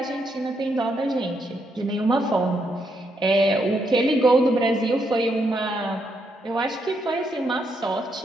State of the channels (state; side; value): normal; both; correlation 0.78